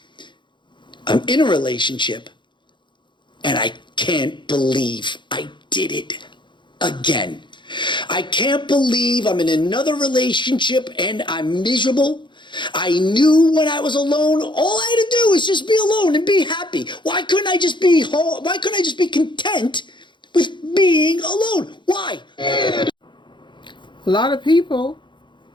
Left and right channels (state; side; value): late; right; 0.23 ms